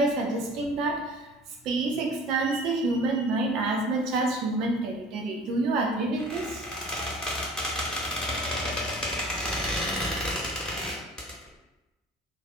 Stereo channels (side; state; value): both; normal; correlation 0.45